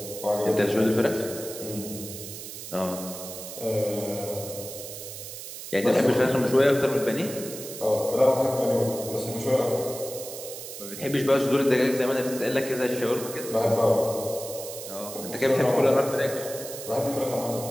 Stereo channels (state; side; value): noise; right; hiss, 10 dB below the sound